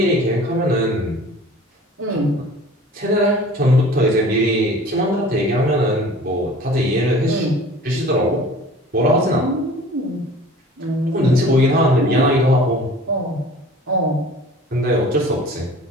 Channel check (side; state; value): both; normal; correlation 0.45